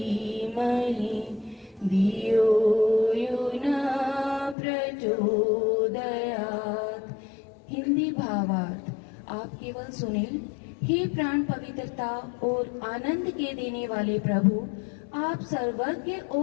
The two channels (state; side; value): drops out; right; at 4.5 s